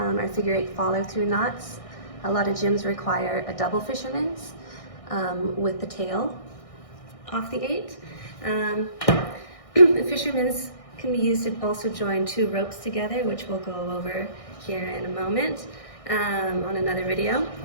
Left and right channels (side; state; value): right; late; 1.6 ms